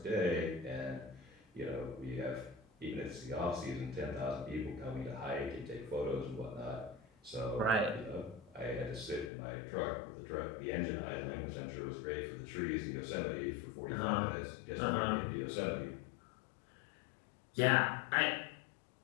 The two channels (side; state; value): right; drops out; at 9.3 s